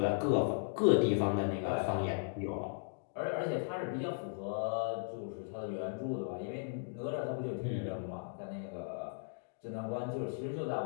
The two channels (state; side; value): silent; right; digital silence